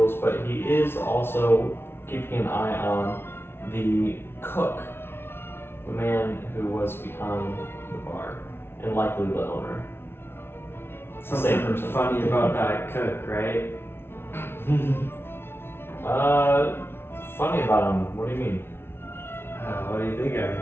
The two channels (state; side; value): late; right; 0.12 ms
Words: but he is also keeping an eye on the cook, the man who was behind the bar, and likely the owner. Something Same person. funny about that cook, right? Funny about him. What do you mean? What do you think I